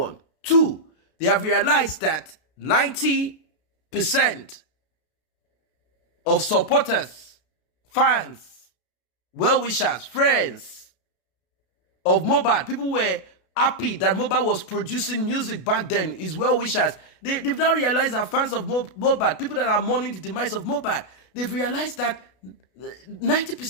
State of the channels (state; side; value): late; right; 33 ms